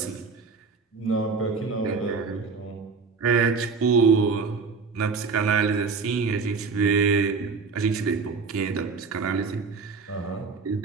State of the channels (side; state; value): left; quieter; 4.8 dB